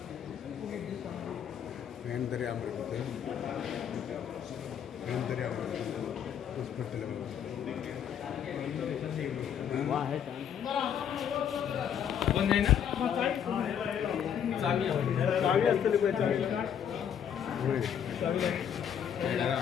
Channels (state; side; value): quieter; right; 8.7 dB